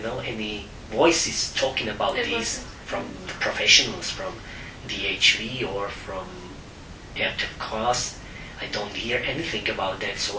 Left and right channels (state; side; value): identical; both; correlation 1.00